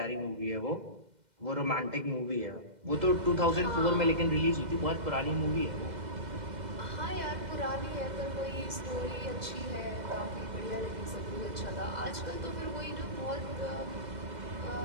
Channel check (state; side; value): late; left; 2.1 ms